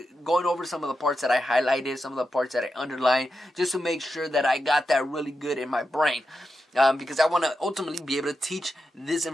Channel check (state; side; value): normal; both; correlation 0.89